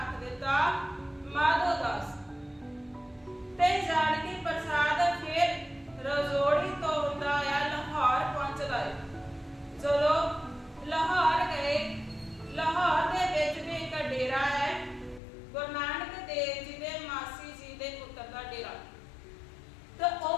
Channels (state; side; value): drops out; right; at 15.2 s